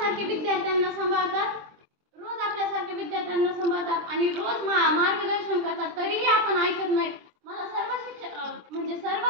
विद्यार्थ्यांना सांभाळतात आणि रोज मार्गदर्शन करतात, तरीही आपण ऐकत नाही। मला सर्व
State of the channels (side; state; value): left; late; 23 ms